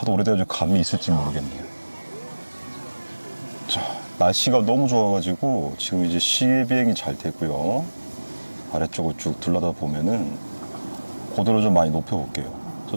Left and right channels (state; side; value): inverted; both; correlation -1.00